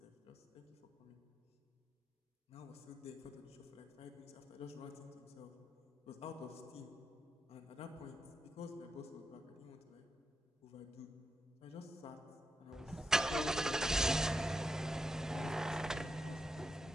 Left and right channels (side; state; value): both; normal; correlation 0.84